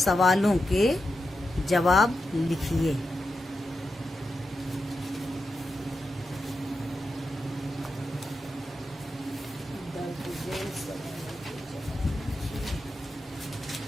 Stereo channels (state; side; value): normal; both; correlation 0.88